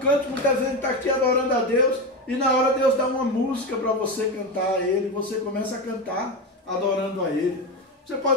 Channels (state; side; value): normal; both; correlation 0.17